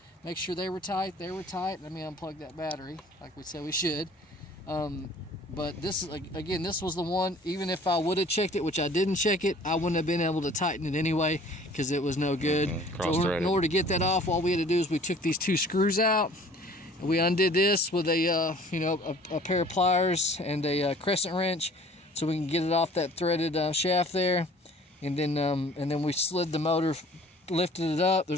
make sure they were tight. They were tight. Let me unplug that battery, like we said we should. But this is, again, this was the one. Even if I would have checked it, which I didn't check it, I wouldn't have been able to tighten it anyway because it was no good. So in order to get that off, all we had to do is we took these two screws out. And we undid this with a, you know, a pair of pliers and a crescent wrench, so we can get it off that threaded shaft there. And then we slid the motor, lifted it up.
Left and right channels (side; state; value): both; normal; correlation 0.51